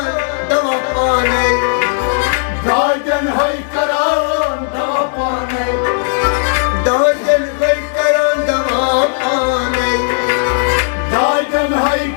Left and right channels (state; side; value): silent; right; digital silence